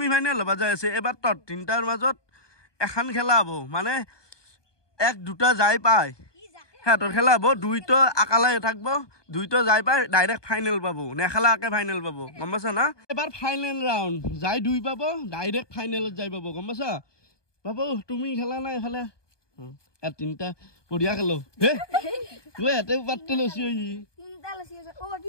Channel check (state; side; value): late; right; 1.2 ms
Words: ফাইনাল হবা যাই আছে এবাৰ তোৰ 3টাৰ মাজত এখন খেলা হব মানে 1 2টা যাই পায় তোর খেলা হবো 2 তো আকালাই থাকবো 2 তো যাই পায় ডাইরেক্ট ফাইনাল পাবো নেখালাকে ফাইনাল পাবো গম পাইছা না এবার ফাইনাল রাউন্ড যাই 2 পাবো ডাইরেক্ট ফাইনালত যাই পাবো গম পাইছা বাবু তুমি খেলা না এফালে 3টা বঢ়িয়া খেলো হে তুই এতে পাত্তে লছি